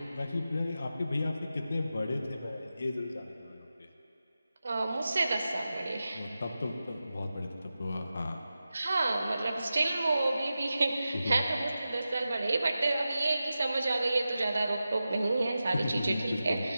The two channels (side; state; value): both; inverted; correlation -0.93